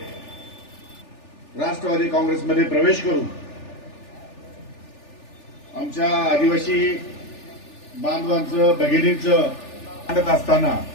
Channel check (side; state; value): right; late; 3.4 ms